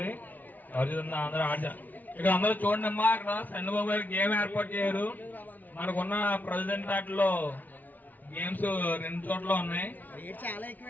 ఎవరు అందరూ ఇక్కడ అందరూ చూడండి అమ్మా, అక్కడ చంద్రబాబు గారు గేమ్ ఏర్పాటు చేయరు. మనకున్న ప్రెసిడెంట్ ఆటలో గేమ్స్ 2 చోట్ల ఉన్నాయి,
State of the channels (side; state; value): right; late; 0.081 ms